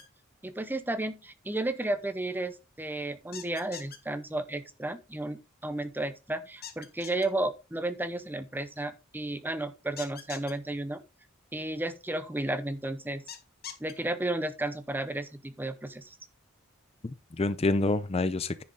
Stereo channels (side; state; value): both; normal; correlation 0.70